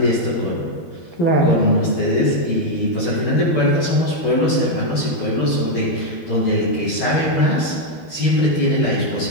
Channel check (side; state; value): right; late; 12 ms